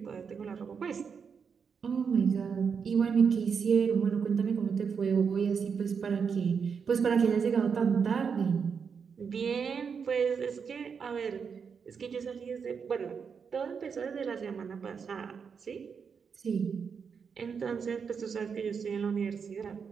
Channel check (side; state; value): left; quieter; 6.2 dB